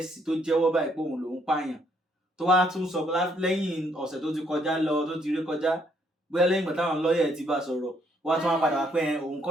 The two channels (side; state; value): both; normal; correlation 0.69